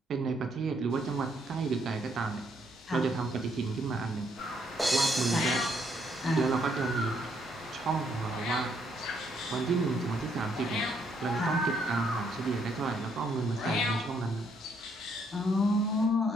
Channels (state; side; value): normal; both; correlation 0.71